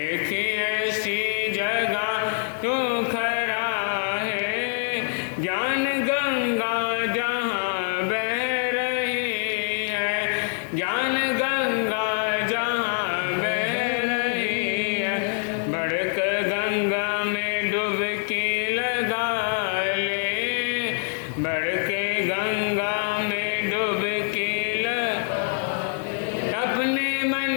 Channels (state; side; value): silent; right; 62 dB below the other